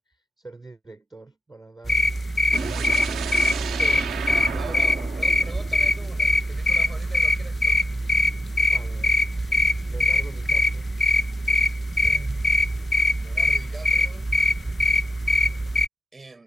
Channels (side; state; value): both; normal; correlation 0.84